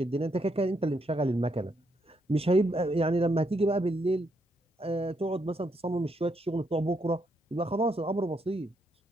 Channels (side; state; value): both; normal; correlation 0.77